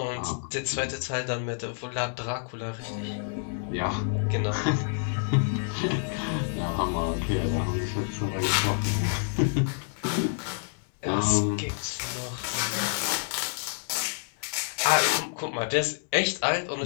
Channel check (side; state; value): right; silent; digital silence